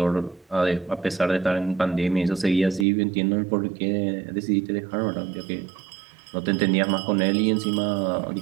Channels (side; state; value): left; drops out; at 2.9 s